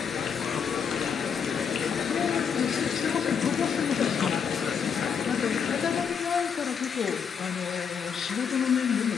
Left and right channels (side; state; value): right; quieter; 6.9 dB